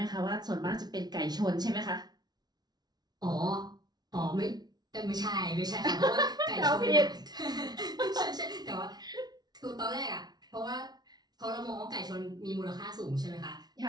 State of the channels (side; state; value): left; late; 0.19 ms